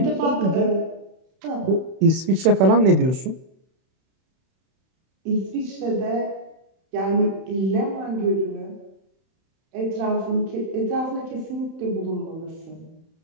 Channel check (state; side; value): late; left; 31 ms